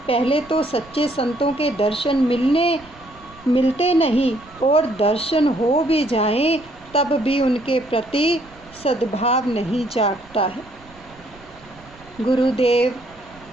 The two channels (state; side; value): noise; right; rumble, 25 dB below the sound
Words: पहले तो सच्चे संतों के दर्शन मिलते नहीं, और दर्शन हो भी जाएं तब भी उनके प्रति सद्भाव नहीं जागता है। गुरुदेव